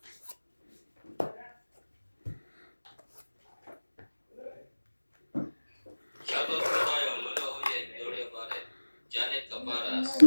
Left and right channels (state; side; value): inverted; both; correlation -1.00